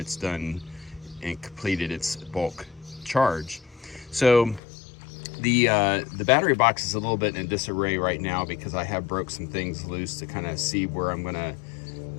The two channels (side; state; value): right; drops out; at 4.6 s